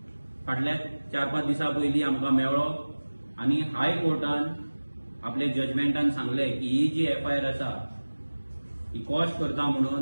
फाटल्या 4-5 दिसां पयलीं आमकां मेळ्ळो आनी हायकोर्टान आपले जजमेंटान सांगले की ही जी एफआयआर आसा ही कॉश करता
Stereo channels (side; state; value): both; inverted; correlation -1.00